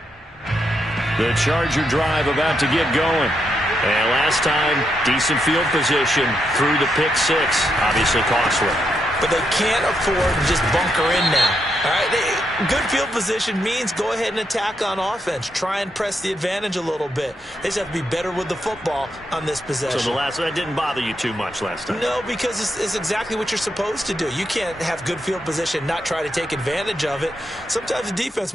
The Charger drive about to get going. And last time, decent field position through the pick six. Obviously costly. But they can't afford to just bunker in now. All right, good field position means go ahead and attack on offense. Try and press the advantage a little bit. They just have to be better with the football on this possession. So that didn't bother you too much last time? No, because it's exactly what you're supposed to do. You can't have good field position, not try to take advantage of it. Sometimes the defense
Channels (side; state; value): both; normal; correlation 0.81